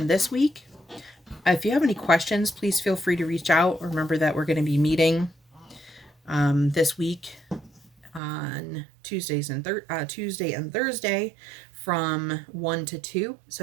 this week. If you have any questions, please feel free to reach out. Remember that we're going to be meeting this week on Tuesday and Thursday from 1 to 2.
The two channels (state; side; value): drops out; left; at 8.2 s